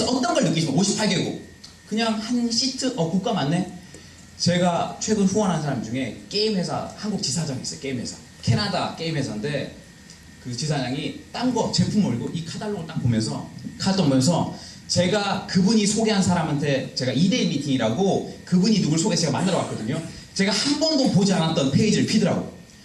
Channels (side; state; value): both; identical; correlation 1.00